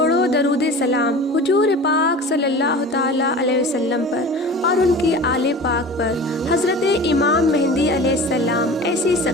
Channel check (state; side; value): normal; both; correlation 0.37